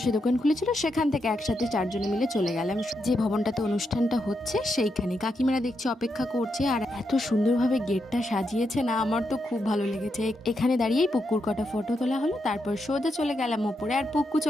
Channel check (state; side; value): normal; both; correlation 0.83